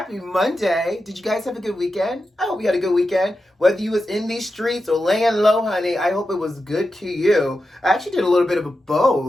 Monday. Did you guys have a good weekend? I hope you had a good weekend. Whether you was in these streets or laying low, honey, I hope it was good to you. I actually did a little bit of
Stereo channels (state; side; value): normal; both; correlation 0.90